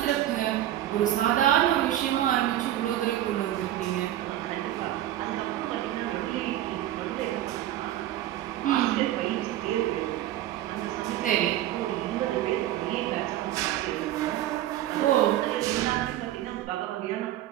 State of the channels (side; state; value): left; quieter; 13.1 dB